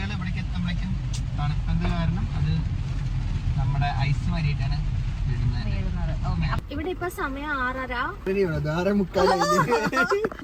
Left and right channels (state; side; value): identical; both; correlation 1.00